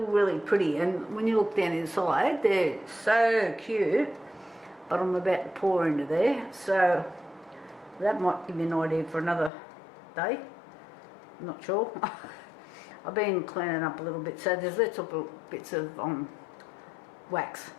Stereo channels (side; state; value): right; drops out; at 9.5 s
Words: pretty, and when you look down inside, they're so cute. But I'm about to pour into there, so that might give you an idea for another day. I'm not sure. I've been cleaning up a little bit, so there's little bits of wax